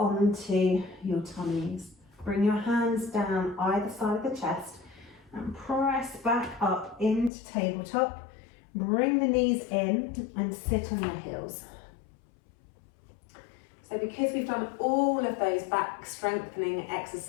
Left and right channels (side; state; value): right; drops out; at 7.3 s